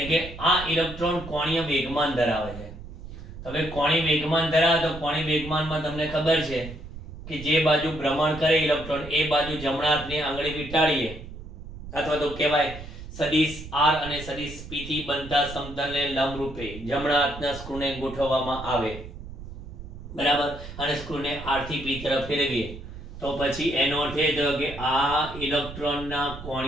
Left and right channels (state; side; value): noise; right; rumble, 12 dB below the sound